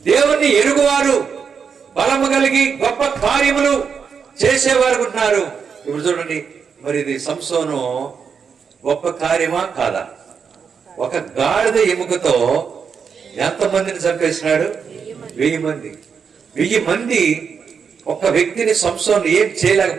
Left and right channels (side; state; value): left; quieter; 6.4 dB